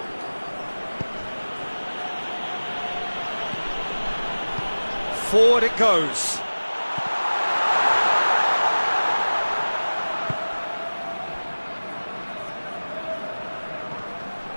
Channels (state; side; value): inverted; both; correlation -1.00